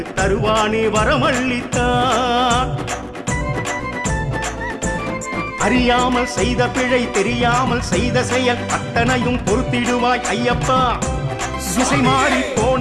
தருவானே வரமள்ளித்தான். அறியாமல் செய்த பிழை தெரியாமல் செய்த செயல் அத்தனையும் பொறுத்திடுவாய் ஐயப்பா. திசை மாறி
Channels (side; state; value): both; identical; correlation 1.00